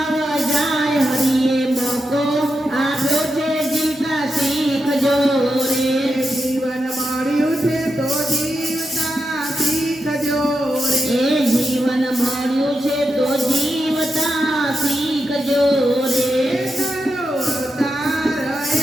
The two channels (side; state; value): both; normal; correlation 0.87